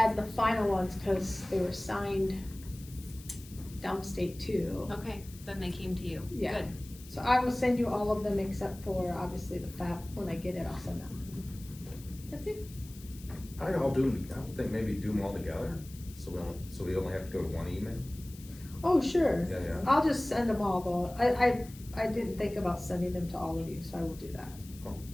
the final ones, cause they were signed downstate too. Okay, then they came to you. Yeah. Good. So I will send you all of them except for obviously the FAP. When I get it, I'll send them. That's it. I would think maybe do them all together, so So we only have to go to one email? Oh, sure. Yeah, yeah. I'll just send them all though. I didn't think about sending them to all of you, so I will do that. Oh,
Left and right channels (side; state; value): left; noise; hiss, 19 dB below the sound